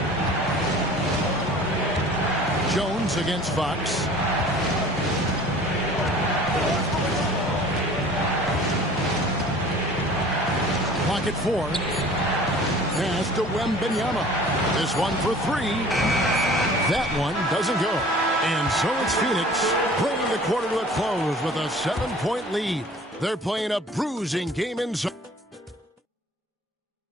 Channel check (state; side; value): normal; both; correlation 0.47